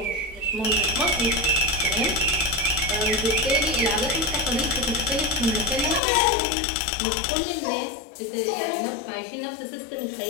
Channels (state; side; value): drops out; right; at 6.0 s